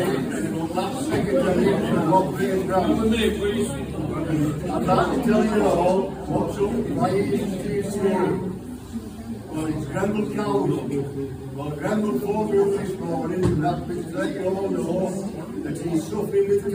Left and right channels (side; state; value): both; identical; correlation 1.00